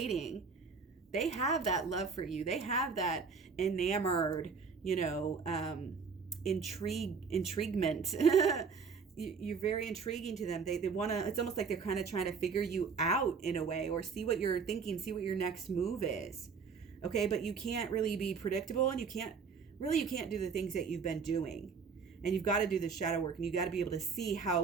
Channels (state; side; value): quieter; left; 5.5 dB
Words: They have that love for you. They have that enamored, intriguement. You're very intriguing to them. They want to, it's almost like they're kind of trying to figure you out in a way, or see what you're thinking, see what your next move is. Okay. But you can't really be predictable, and you can't do the things that you've been doing. And you've got to do the shadow work, and you got to be able to see how